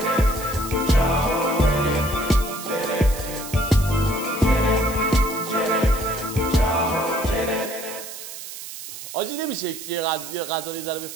آجی نمیشه یه غذا رو ذره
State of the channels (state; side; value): noise; right; hiss, 11 dB below the sound